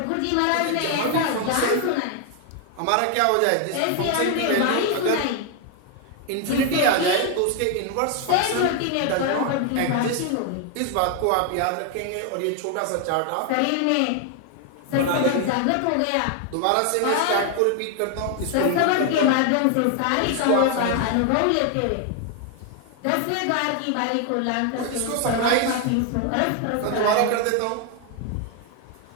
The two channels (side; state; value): both; different; correlation 0.00